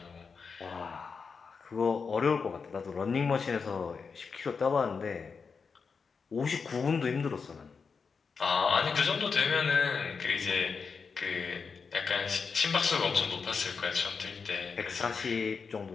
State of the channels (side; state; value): right; quieter; 5.4 dB